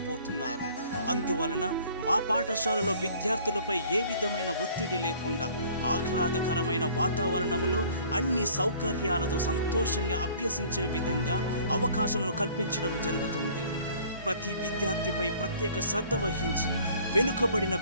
అందువలన మా పాఠశాలలో విద్యార్థులపై ఏ విధమైన ఒత్తిడి లేకుండా ఆహ్లాదకరమైన వాతావరణంలో అన్ని సౌకర్యాలతో సంతోషంగా అభ్యసించే విధంగా అవకాశాలను కల్పించడం జరుగుతుంది. ప్రతి విద్యార్థిపై ప్రత్యేక శ్రద్ధ వహించి వెనుకబడిన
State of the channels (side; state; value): both; inverted; correlation -0.53